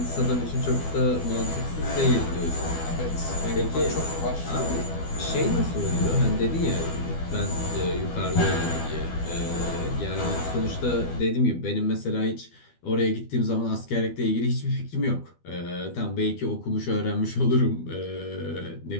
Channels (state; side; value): late; right; 12 ms